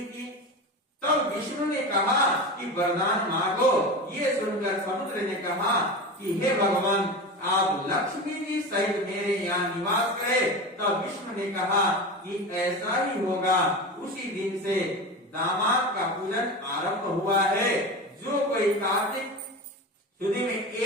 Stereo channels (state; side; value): normal; both; correlation 0.26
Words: की। तब विष्णु ने कहा कि वरदान मांगो। ये सुनकर समुद्र ने कहा कि हे भगवान, आप लक्ष्मी जी सहित मेरे यहाँ निवास करें। तब विष्णु ने कहा कि ऐसा ही होगा। उसी दिन से दामाद का पूजन आरंभ हुआ है। जो कोई कार्तिक शुद्धि में